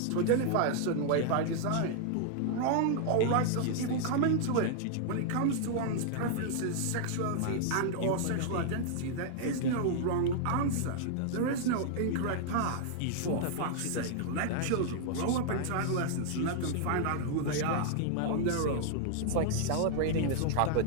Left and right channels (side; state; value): both; different; correlation -0.01